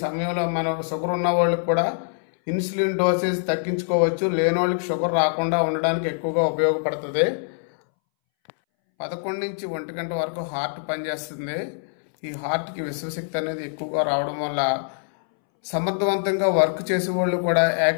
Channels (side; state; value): right; silent; 63 dB below the other